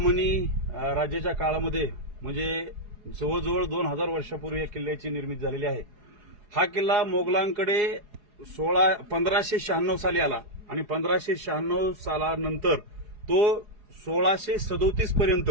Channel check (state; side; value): late; left; 4.8 ms